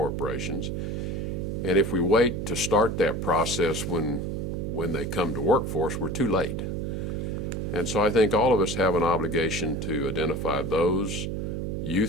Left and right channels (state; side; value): noise; right; hum, 3 dB below the sound